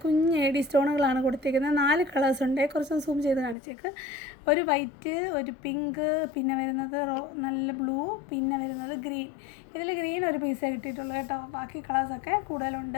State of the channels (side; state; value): right; drops out; at 3.6 s